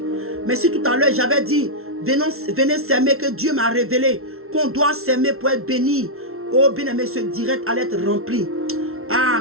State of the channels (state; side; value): late; left; 0.62 ms